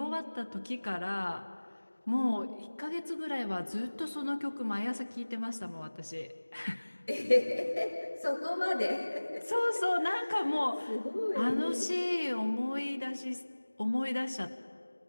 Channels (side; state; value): both; inverted; correlation -1.00